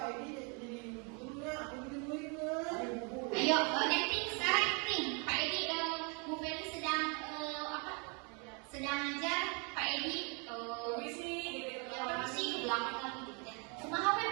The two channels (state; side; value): quieter; left; 34.1 dB